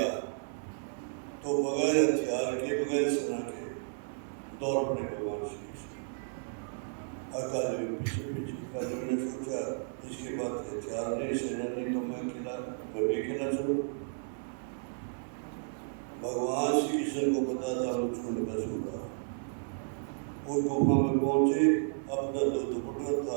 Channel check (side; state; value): left; silent; 56 dB below the other